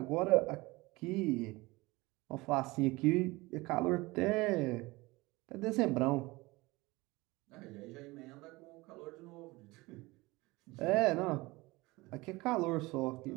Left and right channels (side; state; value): left; quieter; 21.9 dB